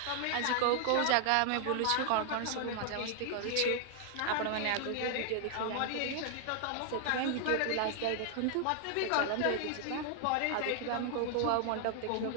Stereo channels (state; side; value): different; both; correlation 0.00